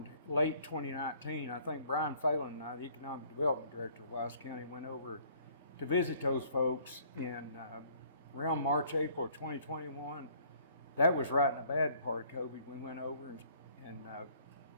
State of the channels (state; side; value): inverted; both; correlation -0.59